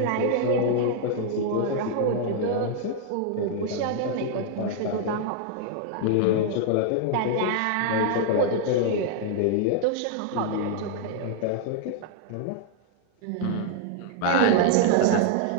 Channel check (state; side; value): different; both; correlation -0.01